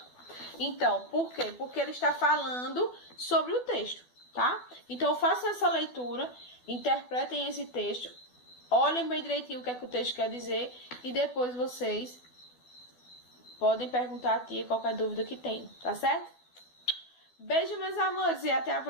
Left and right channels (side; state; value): right; late; 12 ms